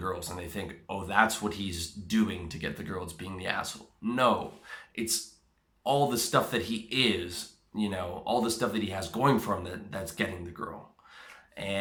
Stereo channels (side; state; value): both; identical; correlation 1.00